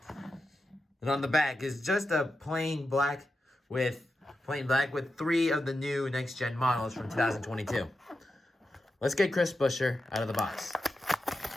And on the back is just a plain black with three of the new Next Gen models from 2022. Let's get Chris Buescher out of the box.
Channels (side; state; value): both; normal; correlation 0.89